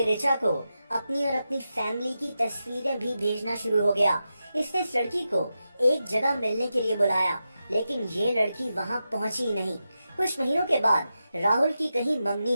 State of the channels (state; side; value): inverted; both; correlation -0.90